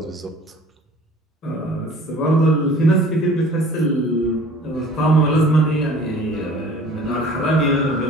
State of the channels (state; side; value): normal; both; correlation 0.48